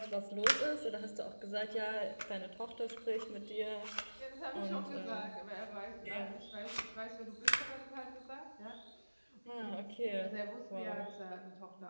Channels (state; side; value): inverted; both; correlation -1.00